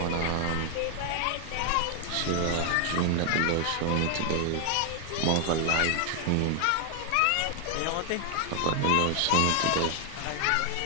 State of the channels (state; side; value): different; both; correlation 0.00